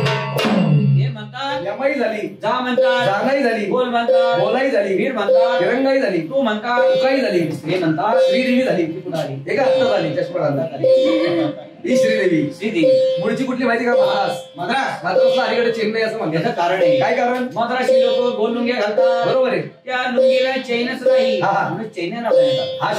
यमाई झाली, जा म्हणतात, जानाई झाली, बोल म्हणतात, बोलाई झाली, वीर म्हणतात, तिरंगाई झाली, तू म्हणतात, तुकाई झाली, श्री म्हणतात, श्रीदेवी झाली. कुणाली एका हातात झाली चष्मा ही श्रीदेवी. श्रीदेवी मुळची कुठली माहिती का? मद्रास. मद्रास मद्रासला अलीकडे चेन्नई असं म्हणतात. याचं कारण आहे. काय कारण? मद्रासी लोक गोल लुंगे घालतात, बरोबर आहे. त्या लुंगीला चैनच नाही, हा, हा. म्हणून चैन नाव देतात. हा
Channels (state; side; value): identical; both; correlation 1.00